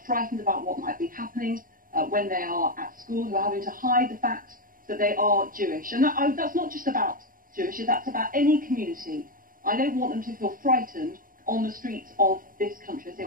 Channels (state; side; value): late; left; 0.41 ms